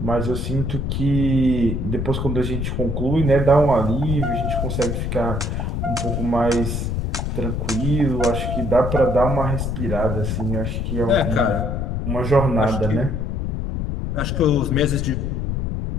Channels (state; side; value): noise; left; rumble, 1 dB below the sound